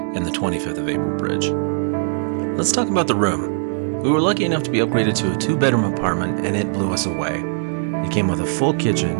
and the 25th of April Bridge. Let's talk about the room. We were lucky enough to be upgraded to a two-bedroom apartment, and it blew us away. It came with a full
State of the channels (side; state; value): left; silent; 65 dB below the other